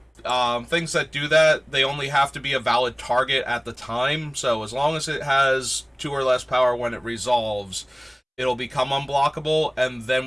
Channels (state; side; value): identical; both; correlation 1.00